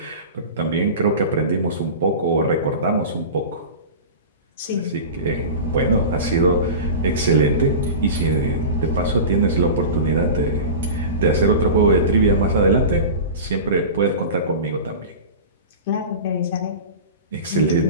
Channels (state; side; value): inverted; both; correlation -0.31